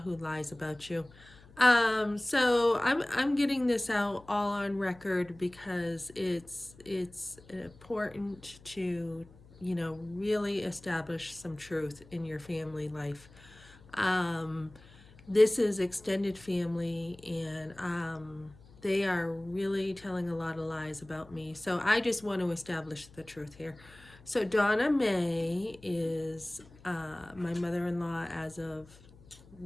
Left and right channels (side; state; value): left; noise; hum, 23 dB below the sound